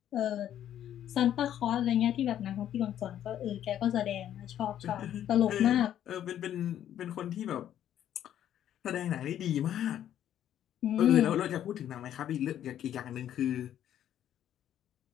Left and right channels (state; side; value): quieter; right; 10.9 dB